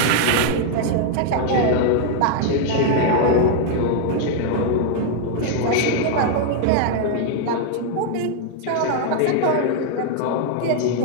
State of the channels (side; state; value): both; different; correlation 0.00